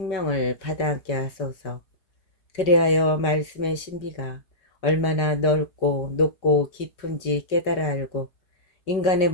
받아안게 하소서. 그리하여 말씀의 신비가 얼마나 넓고 높고 깊은지 깨달아 알고, 인간의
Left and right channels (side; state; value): right; late; 5.2 ms